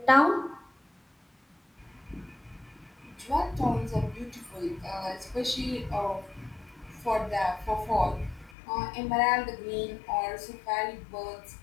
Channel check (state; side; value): drops out; right; at 8.5 s